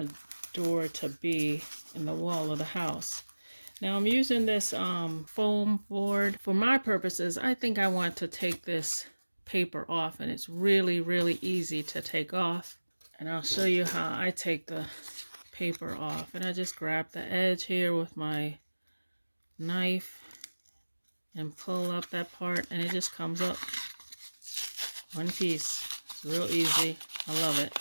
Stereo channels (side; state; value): both; inverted; correlation -1.00